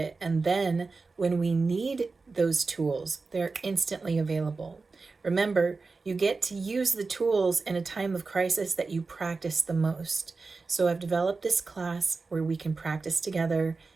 And then when we need those tools, they're instantly available. Remember, you get to use the tools in a time of crisis that you practice the most. So I've developed this class where we can practice together,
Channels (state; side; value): quieter; left; 4.1 dB